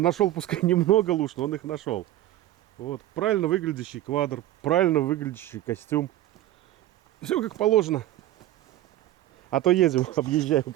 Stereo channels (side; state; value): left; quieter; 14.3 dB